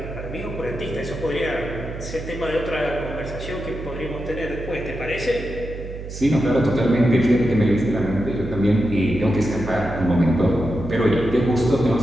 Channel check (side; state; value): right; noise; hum, 10 dB below the sound